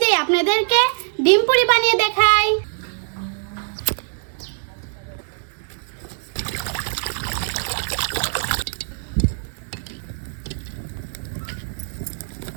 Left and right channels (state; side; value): silent; left; digital silence